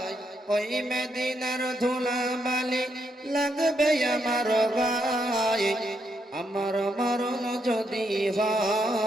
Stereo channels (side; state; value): both; normal; correlation 0.79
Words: ওই মদিনার ধুলাবালি লাগবে আমার গায়, আমার মরণ যদি